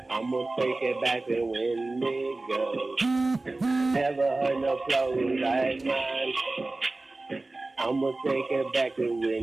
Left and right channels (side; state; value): left; quieter; 3.1 dB